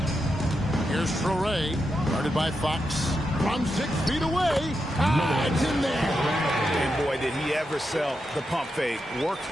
Here's Traore, guarded by Fox. From 6 feet away. It's in there. And boy, did he ever sell the pump fake. Worked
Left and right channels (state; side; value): normal; both; correlation 0.86